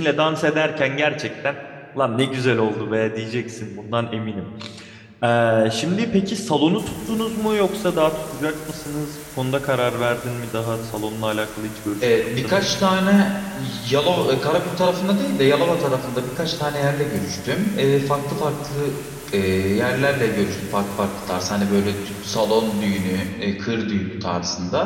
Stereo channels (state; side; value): identical; both; correlation 1.00